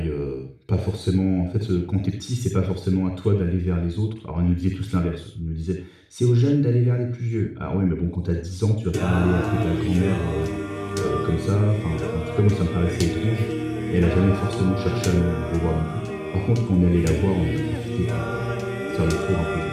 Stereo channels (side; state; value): both; identical; correlation 1.00